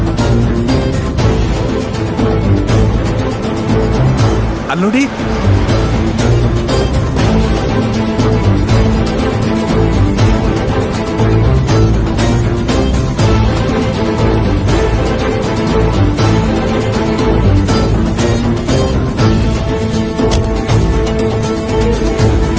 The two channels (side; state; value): both; identical; correlation 1.00